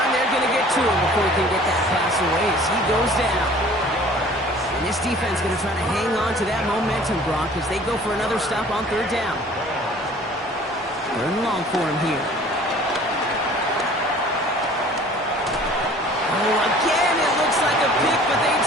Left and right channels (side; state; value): both; normal; correlation 0.49